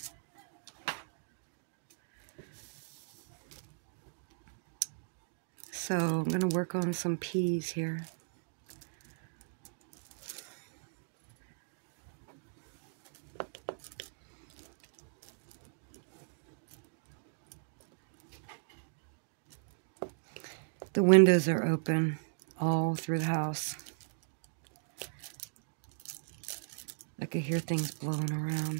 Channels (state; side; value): silent; left; digital silence